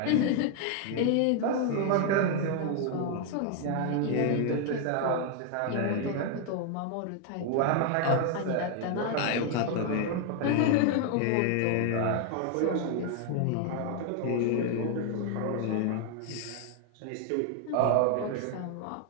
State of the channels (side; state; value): both; different; correlation 0.00